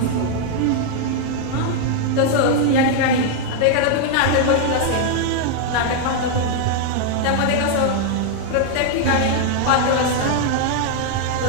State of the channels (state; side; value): different; both; correlation 0.00